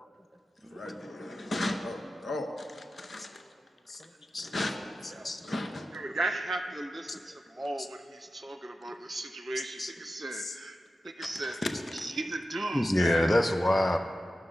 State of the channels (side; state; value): both; normal; correlation 0.93